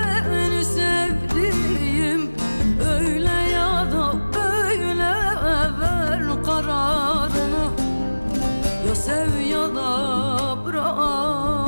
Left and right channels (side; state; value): both; inverted; correlation -1.00